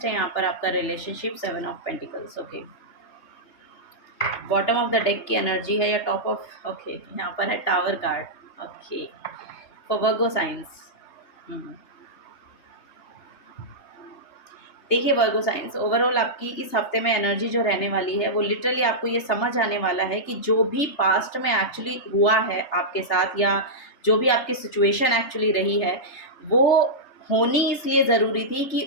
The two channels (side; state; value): right; late; 3.3 ms